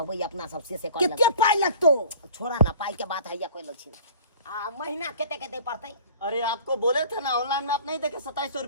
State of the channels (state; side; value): inverted; both; correlation -0.46